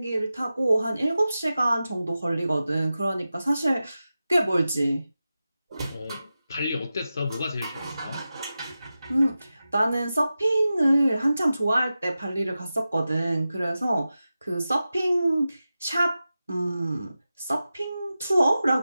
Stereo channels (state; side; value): inverted; both; correlation -0.93